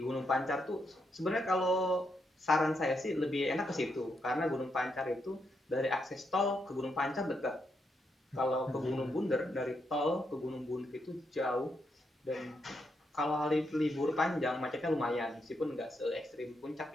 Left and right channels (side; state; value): both; normal; correlation 0.80